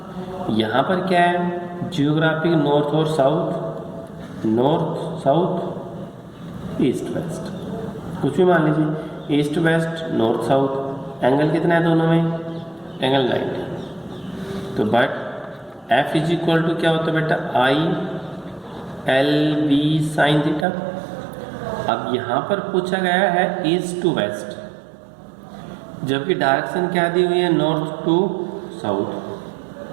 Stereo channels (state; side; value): drops out; left; at 20.7 s